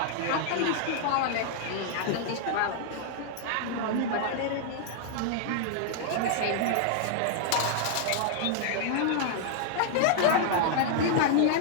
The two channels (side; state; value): both; different; correlation -0.01